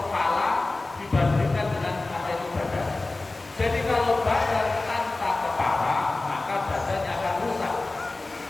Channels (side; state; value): right; quieter; 3.2 dB